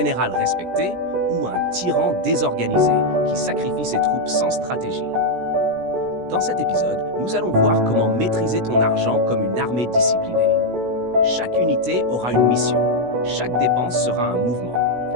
respecté ou un tyran désorganisé qui sacrifie ses troupes sans stratégie? Dans cet épisode, nous allons voir comment maîtriser ton argent comme une armée disciplinée. Chaque unité aura une mission, chaque dépense sera un mouvement,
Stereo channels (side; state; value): left; late; 16 ms